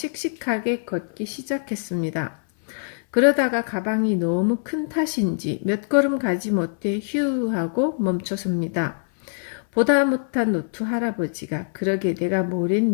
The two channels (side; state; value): right; silent; 63 dB below the other